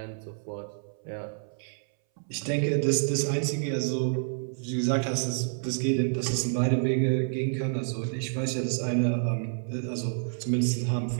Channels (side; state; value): left; silent; 59 dB below the other